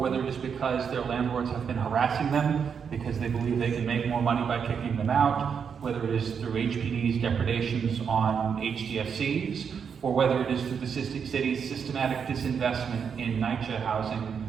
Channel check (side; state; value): left; quieter; 6.8 dB